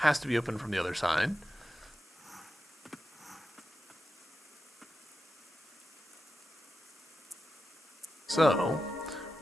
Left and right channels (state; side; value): normal; both; correlation 0.90